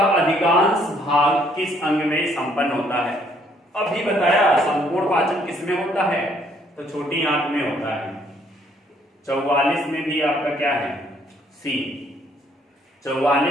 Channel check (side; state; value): both; normal; correlation 0.66